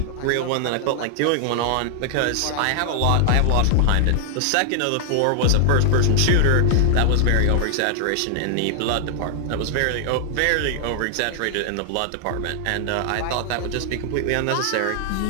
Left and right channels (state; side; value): different; both; correlation 0.00